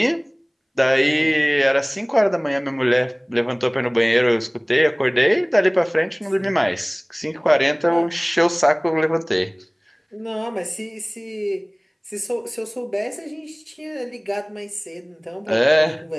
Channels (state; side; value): identical; both; correlation 1.00